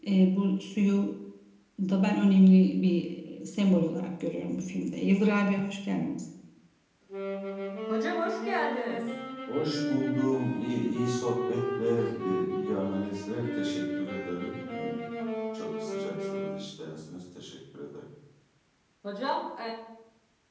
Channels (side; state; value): both; identical; correlation 1.00